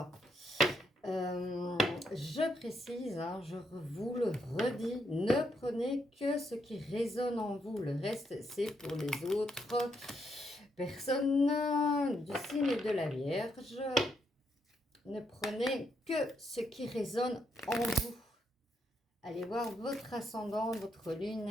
Je précise, hein, je vous le redis, ne prenez que ce qui résonne en vous. Le reste, c'est pour les autres personnes du signe de la Vierge. Ne prenez que ce qui résonne en vous. Allez voir votre ascendant, votre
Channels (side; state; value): both; normal; correlation 0.77